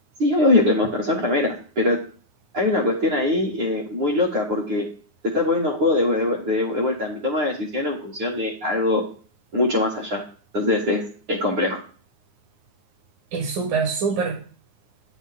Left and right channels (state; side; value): late; left; 9.6 ms